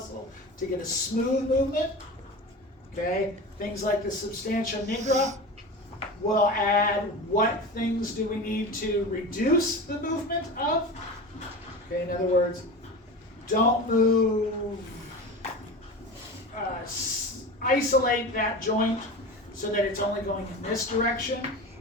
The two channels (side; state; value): both; normal; correlation 0.30